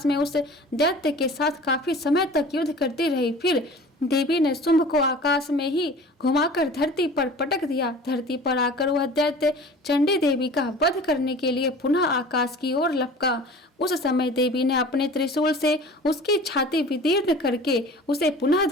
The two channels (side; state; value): both; normal; correlation 0.42